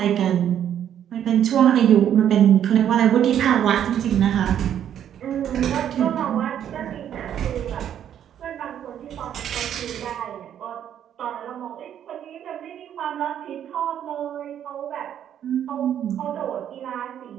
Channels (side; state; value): left; quieter; 9.9 dB